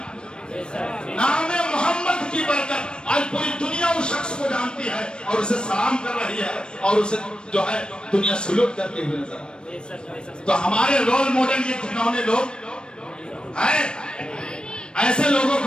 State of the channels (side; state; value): right; late; 0.052 ms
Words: ہے نام محمد کی برکت. آج پوری دنیا اس شخص کو جانتی ہے اور اسے سلام کر رہی ہے اور اسے جو ہے دنیا سلوٹ کرتے ہوئے نظر آتی ہے. تو ہمارے رول ماڈل یہ گھنونے لوگ ہیں. ایسے لوگوں